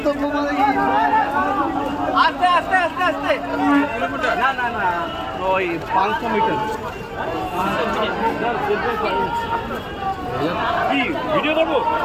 মানে আস্তে আস্তে আস্তে আস্তে না না না ওই 500 মিটার কি ভিডিও করবো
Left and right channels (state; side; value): identical; both; correlation 1.00